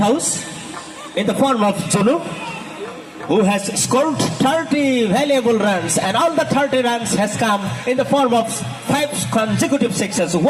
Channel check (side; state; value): both; identical; correlation 1.00